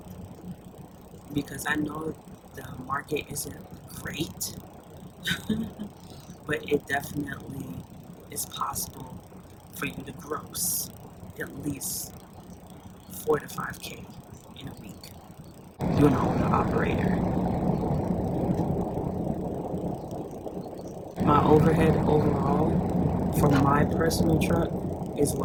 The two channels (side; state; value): both; identical; correlation 1.00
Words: Because I know the market isn't great, but it definitely is possible for you to gross at least 4 to 5K in a week. You're an owner operator. My overhead overall for my personal truck is